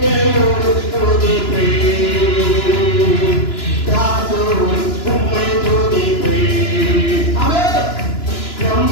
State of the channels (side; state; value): right; late; 2.9 ms